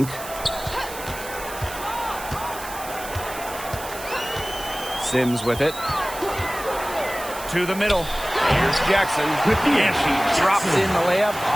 Sims with it. To the middle. Here's Jackson. And she drops in the layup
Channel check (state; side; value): noise; right; hiss, 12 dB below the sound